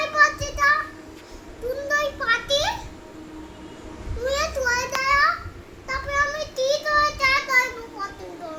পাটিটা সুন্দর পাটি মুয়ে তুই দেয়া তারপরে আমি কি করে চা করব পাটি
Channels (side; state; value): both; identical; correlation 1.00